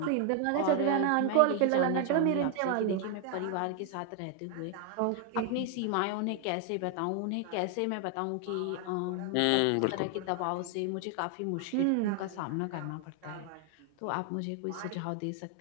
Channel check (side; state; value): both; different; correlation 0.00